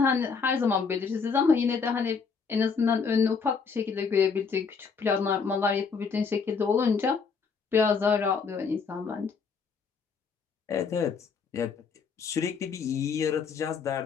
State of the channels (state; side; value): quieter; right; 5.5 dB